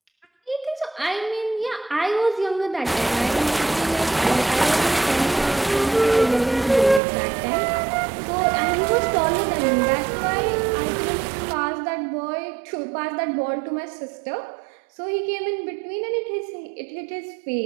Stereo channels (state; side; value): drops out; left; at 7.0 s